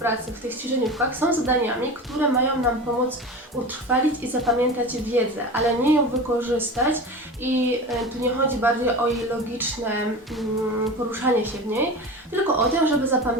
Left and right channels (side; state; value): both; normal; correlation 0.30